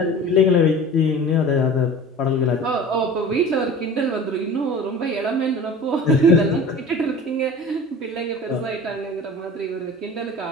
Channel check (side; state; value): both; normal; correlation 0.39